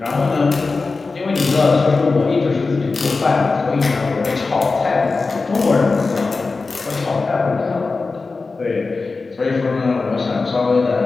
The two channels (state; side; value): quieter; right; 4.0 dB